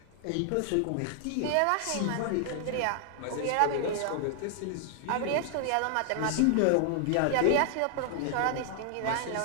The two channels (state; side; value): different; both; correlation 0.00